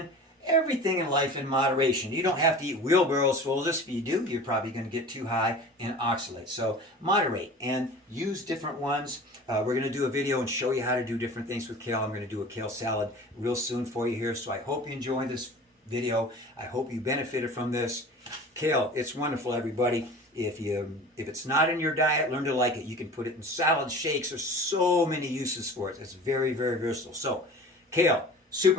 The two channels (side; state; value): both; normal; correlation 0.39